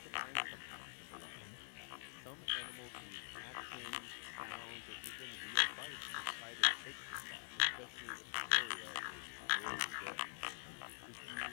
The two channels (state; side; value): silent; right; digital silence